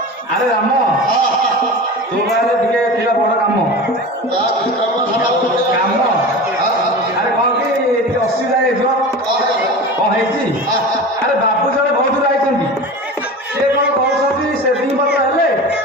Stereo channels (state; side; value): normal; both; correlation 0.31